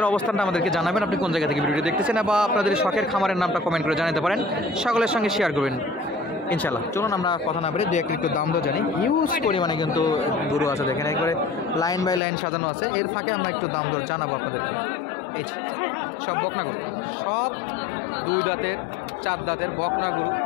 অবস্থানটা আমাদেরকে জানাবেন, আপনি কোন জায়গা থেকে ভিডিওটি দেখতেছেন, বা আপনাদের শখের খামারের নামটা কমেন্ট করে জানাতে পারেন, সকলের সঙ্গে শেয়ার করবেন ইনশাল্লাহ। চলুন আমরা কথা না বলে দু একটু দাম তো জানি। হিউজ পরিমাণে কিন্তু গরু আছে, দেখেন একবারে লাইন বাই লাইন সাজানো আছে। এর ফাঁকে আমরা একটু দাম দর জানাবো আপনাদেরকে। এই সব বকনা গরু, সব 2 দাঁতের 4 দাঁতের বকনা গরু,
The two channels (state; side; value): drops out; right; at 12.2 s